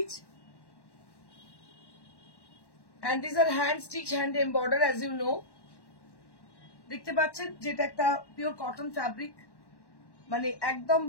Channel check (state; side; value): late; right; 1.1 ms